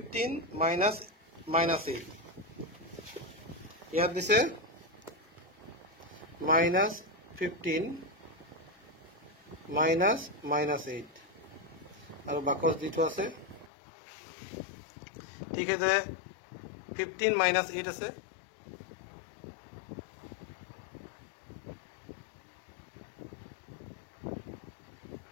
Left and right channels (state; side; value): drops out; right; at 13.7 s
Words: -8 ইয়াত দিছে -15 -8 আৰু বাকস দিটো আছে ঠিক আছে 15 -8 আছে